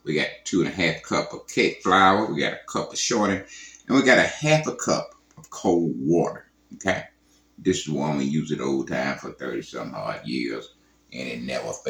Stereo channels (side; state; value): both; identical; correlation 1.00